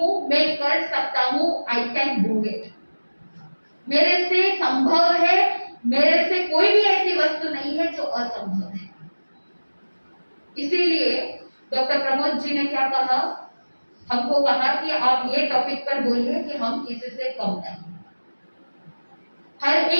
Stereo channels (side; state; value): both; inverted; correlation -1.00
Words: मैं कर सकता हूँ, आई कैन डू इट। मेरे से संभव है, मेरे से कोई भी ऐसी वस्तु नहीं है जो असंभव है। इसीलिए डॉक्टर प्रमोद जी ने क्या कहा? हमको कहा कि आप ये टॉपिक पर बोलिए कि हम किसी से कम नहीं। हर